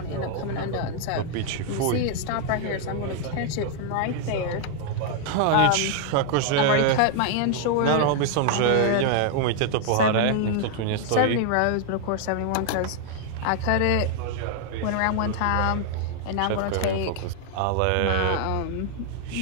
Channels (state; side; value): different; both; correlation 0.00